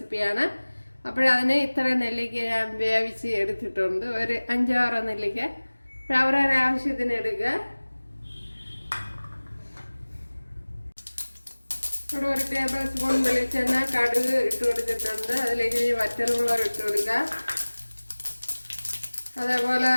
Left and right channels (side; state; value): both; inverted; correlation -1.00